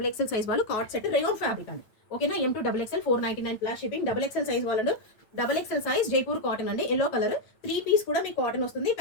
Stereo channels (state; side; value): late; right; 9.0 ms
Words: సైజ్ వాళ్ళు కార్డ్ సెట్ రేయాన్ ఫ్యాబ్రిక్ అండి. ఓకేనా, M2 XXL 499 plus shipping. XXL size వాళ్ళు XXL సైజ్ జైపూర్ కాటన్ అండి. ఎల్లో కలర్ 3 పీస్ కూడా మీకు కాటన్ వస్తుంది.